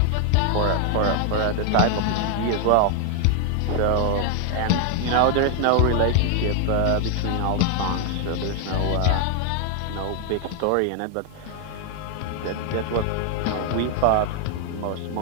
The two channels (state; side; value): different; both; correlation 0.00